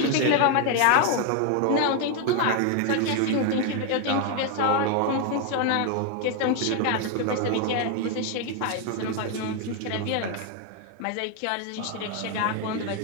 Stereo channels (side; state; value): both; different; correlation 0.01